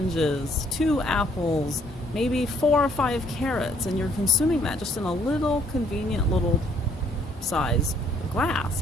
2 apples, maybe 4 or 5 carrots, and you're consuming that just in a little convenient little size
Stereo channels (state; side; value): normal; both; correlation 0.64